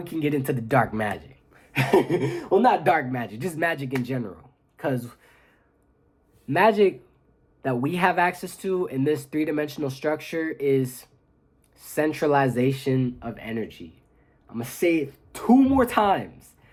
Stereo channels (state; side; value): identical; both; correlation 1.00